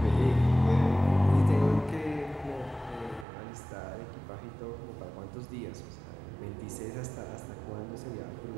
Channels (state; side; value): drops out; left; at 3.2 s